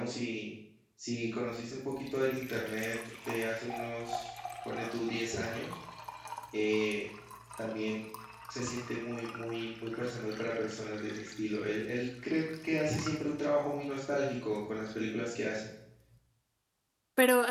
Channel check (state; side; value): identical; both; correlation 1.00